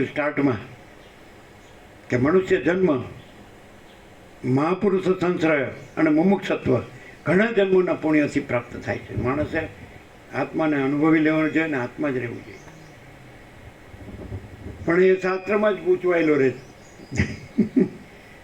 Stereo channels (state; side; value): identical; both; correlation 1.00